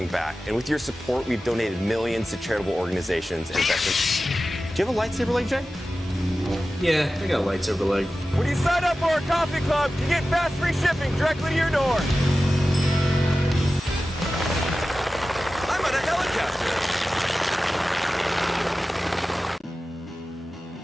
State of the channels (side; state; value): both; normal; correlation 0.95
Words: back. And with your support, we've donated millions to charitable organizations and veterans. Do you have a lightsaber leg, Jay? Yeah, I got a lightsaber leg. When you sign up for our coffee club, you get fast free shipping directly to your door. I'm on a helicopter.